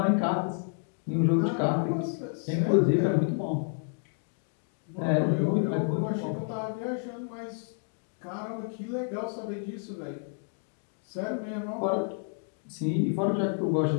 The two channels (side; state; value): right; silent; 58 dB below the other